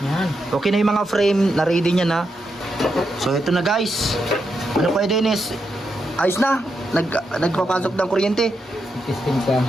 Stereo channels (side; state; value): both; normal; correlation 0.84